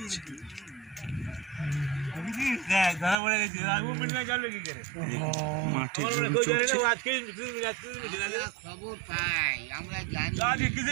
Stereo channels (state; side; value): drops out; left; at 3.2 s